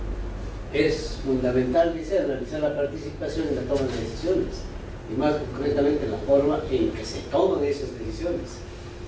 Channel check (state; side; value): identical; both; correlation 1.00